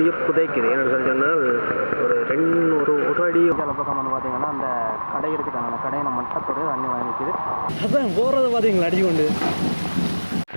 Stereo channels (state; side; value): inverted; both; correlation -1.00